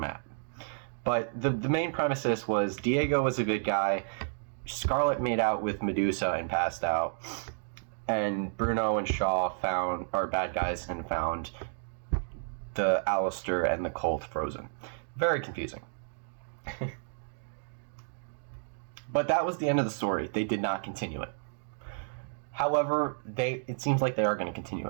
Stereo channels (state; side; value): silent; left; digital silence